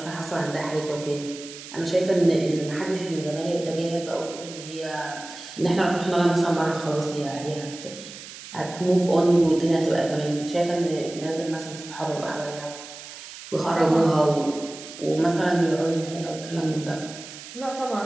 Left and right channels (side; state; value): right; noise; hiss, 14 dB below the sound